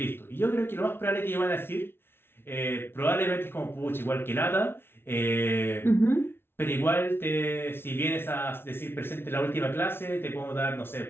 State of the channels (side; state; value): right; late; 0.11 ms